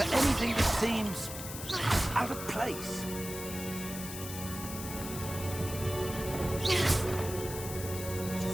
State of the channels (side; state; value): left; noise; hiss, 9 dB below the sound